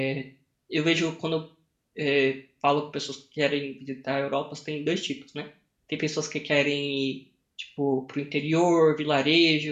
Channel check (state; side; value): identical; both; correlation 1.00